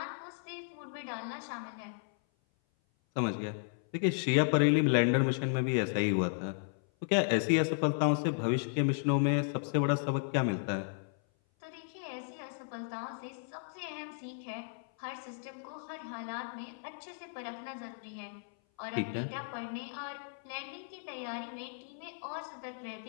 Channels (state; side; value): silent; right; 55 dB below the other